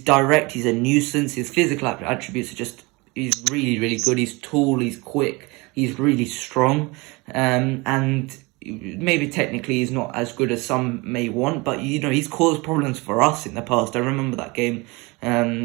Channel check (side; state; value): left; quieter; 25.4 dB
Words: direct, he's a nuisance, his physical attributes are just, he's really, really good, he's tall, he's quick, he's really strong, and maybe technically he's not as good as some may want, but he's caused problems for us in the past. I remember that game